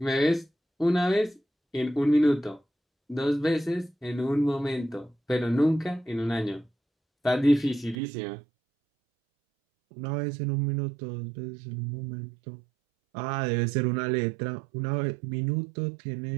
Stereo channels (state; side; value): drops out; left; at 8.0 s